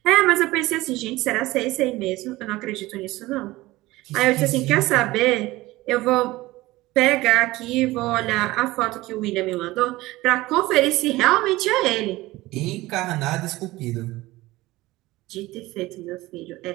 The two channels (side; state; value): left; quieter; 18.9 dB